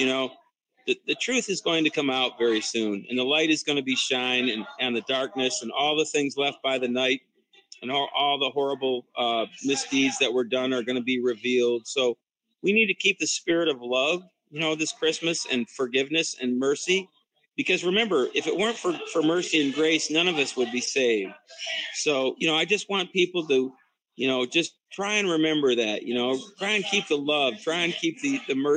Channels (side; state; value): both; identical; correlation 1.00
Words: truth is going to come out very soon. And the light is going to be shine and the darkness and all the things left by the night and all the horrible misdeeds that were done are going to be revealed. So we need to keep the spirit of love, this Christmas and forgiveness and mercy. Because remember, if it weren't for mercy and grace, none of us would be saved. So, I just want people to, just try and remember that, try and keep the love, try and keep the